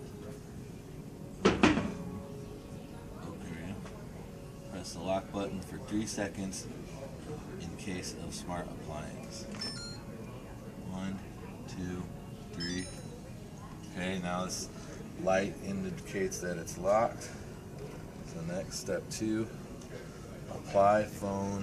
Okay. Press the lock button for 3 seconds in case of smart appliance. 1, 2, 3. Okay, now this light indicates that it's locked. So next, step 2, apply phone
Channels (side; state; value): both; identical; correlation 1.00